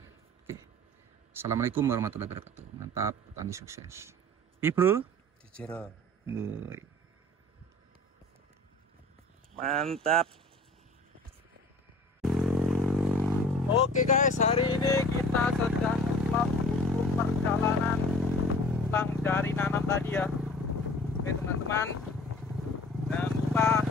Assalamualaikum warahmatullahi wabarakatuh. Mantap, petani sukses. Bro. Mantap. Oke guys, hari ini kita sedang melakukan perjalanan pulang dari nanam tadi ya. Oke teman-teman, jangan lupa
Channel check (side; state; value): both; normal; correlation 0.46